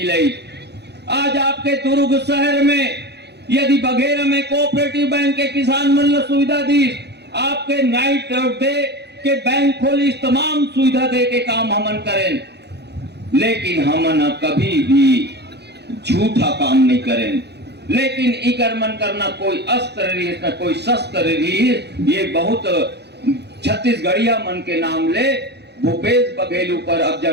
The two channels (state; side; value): late; left; 0.49 ms